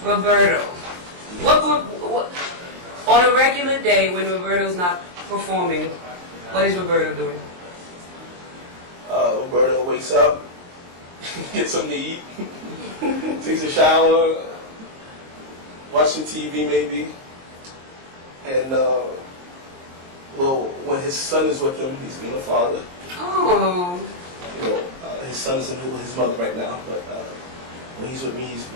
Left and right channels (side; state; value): left; late; 23 ms